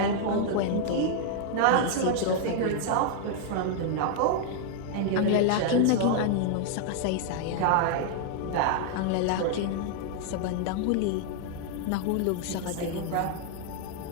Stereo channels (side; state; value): both; different; correlation 0.00